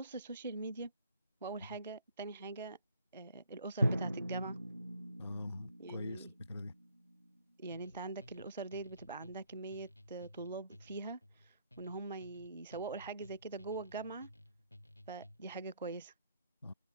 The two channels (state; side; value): inverted; both; correlation -0.67